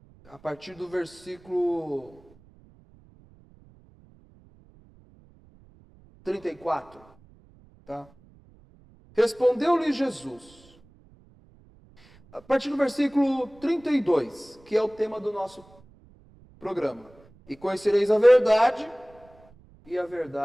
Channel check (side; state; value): right; noise; rumble, 27 dB below the sound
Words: a partir do versículo 34, tá? Respondeu-lhe Jesus, a partir do versículo 32, que é o tema do nosso programa. E conhecereis a verdade, e a